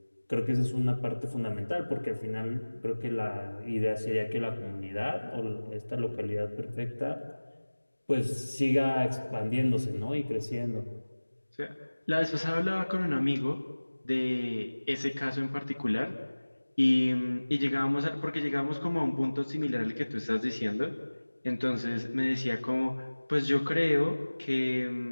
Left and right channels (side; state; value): both; inverted; correlation -1.00